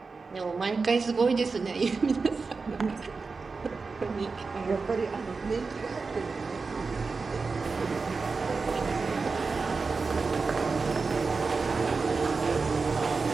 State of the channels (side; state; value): left; quieter; 4.4 dB